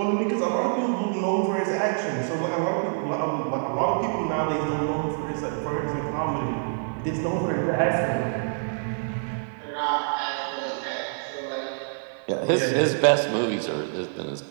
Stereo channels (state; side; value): silent; left; digital silence